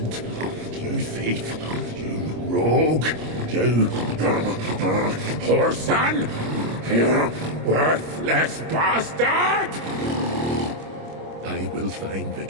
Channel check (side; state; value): left; late; 25 ms